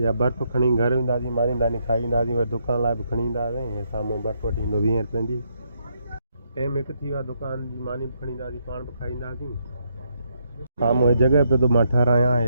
बर्फ़ खणी घर वेंदासीं मारींदासीं खाई ईंदासीं वरी दुकान लाइ बि खणी ईंदासीं हे साम्हूं बर्फ़ वठी ईंदो 20 रुपयनि जी टाइम हिकु थी वियो आहे दुकान जी मानी बि खणी ईंदासीं पाण बि खाई ईंदासीं साम्हूं हे जॻह पे तो मां ठहिरायां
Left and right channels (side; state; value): both; inverted; correlation -0.75